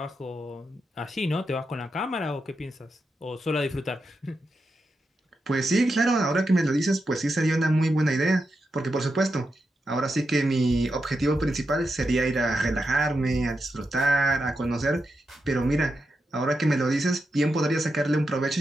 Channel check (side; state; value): both; normal; correlation 0.87